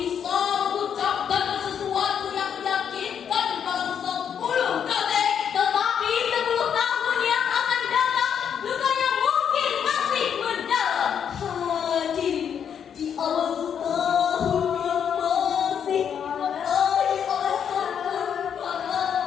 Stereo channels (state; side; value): quieter; right; 8.1 dB